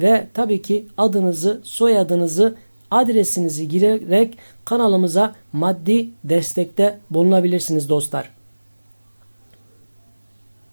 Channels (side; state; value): both; inverted; correlation -1.00